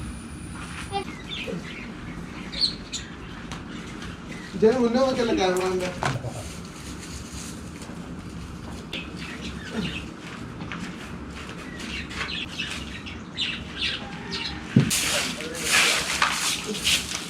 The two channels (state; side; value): identical; both; correlation 1.00